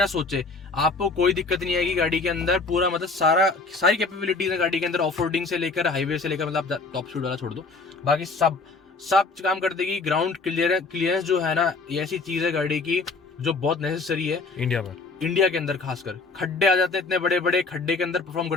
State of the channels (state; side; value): quieter; right; 3.9 dB